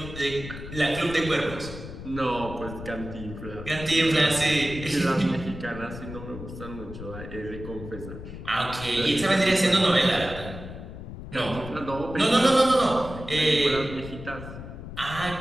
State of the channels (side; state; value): left; noise; rumble, 11 dB below the sound